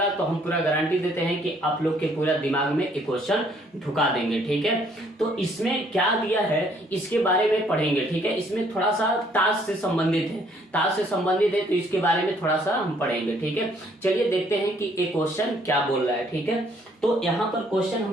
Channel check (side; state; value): both; normal; correlation 0.64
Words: तो हम पूरा गारंटी देते हैं कि आप लोग के पूरा दिमाग में एक क्वेश्चन ढुका देंगे। ठीक है, तो इसमें क्या दिया है इसके बारे में पढ़ेंगे। ठीक है, इसमें थोड़ा सा ताश से संबंधित है, ताश से संबंधित है तो इसके बारे में थोड़ा सा हम पढ़ेंगे। ठीक है, चलिए देखते हैं कि एक क्वेश्चन क्या बोल रहा है। ठीक है, तो यहाँ पर क्वेश्चन हम